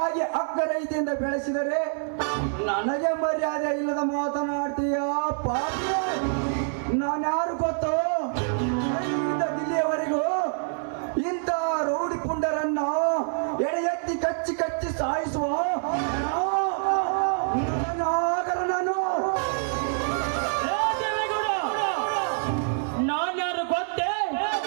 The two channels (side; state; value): left; silent; 57 dB below the other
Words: ಅಕ್ಕರೈತೆಯಿಂದ ಬೆಳೆಸಿದರೆ ನನಗೆ ಮರ್ಯಾದೆ ಇಲ್ಲದ ಮಾತನಾಡ್ತೀಯ ಪಾಪಿ. ನಾನ್ಯಾರು ಗೊತ್ತೋ? ಅಲ್ಲಿಂದ ದಿಲ್ಲಿಯವರೆಗೂ ಇಂಥ ರೌಡಿ ಪುಂಡರನ್ನ ಎಳೆ ಎತ್ತಿ ಕಚ್ಚಿ ಕಚ್ಚಿ ಸಾಯಿಸುವ ನಾಗರ ನಾನು. ಏ ದೇವೇಗೌಡ, ನಾನ್ಯಾರು ಗೊತ್ತೇ?